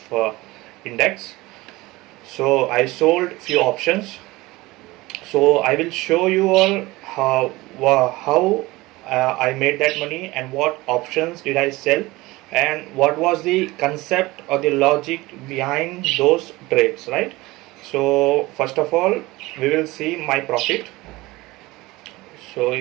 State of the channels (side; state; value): left; quieter; 20.5 dB